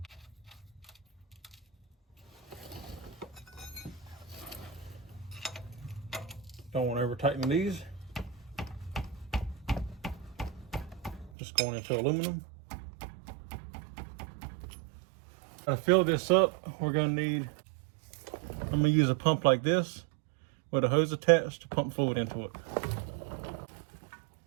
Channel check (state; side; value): drops out; left; at 11.3 s